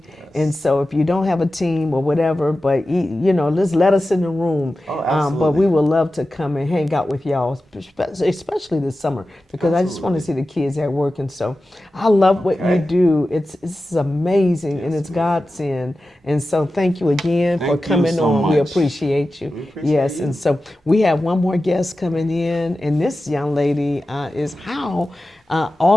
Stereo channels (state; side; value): normal; both; correlation 0.94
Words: And so if you don't have a team or whatever, but just let us in the room. Oh, But we would love to come and hang out with y'all, especially this summer, because I just want to see the kids at work. And so I love what you do. It's amazing, and it's Godsend. And so thank you again for Thank you coming so on. We much. appreciate you. We appreciate Yes, you. and so we have one more guest coming in, and this young lady is how